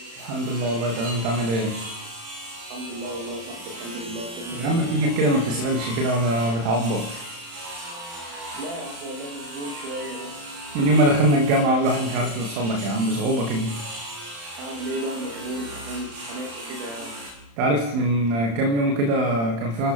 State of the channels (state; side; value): late; left; 35 ms